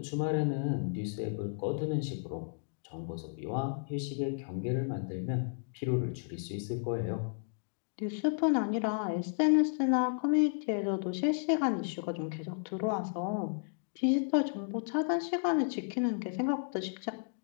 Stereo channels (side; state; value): right; silent; digital silence